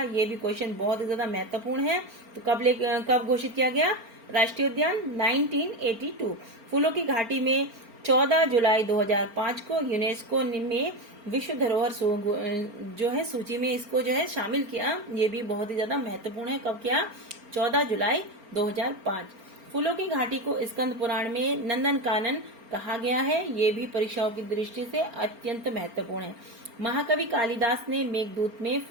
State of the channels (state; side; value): late; left; 4.4 ms